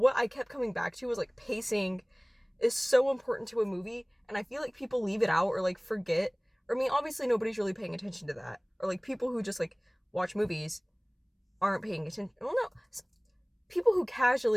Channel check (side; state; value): both; identical; correlation 1.00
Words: I kept coming back to was pacing is so important to a movie, and I feel like people leave it out or forget. Or I mean, obviously nobody's really paying attention to that. Or people who just watch movies aren't paying attention. Well, no, people who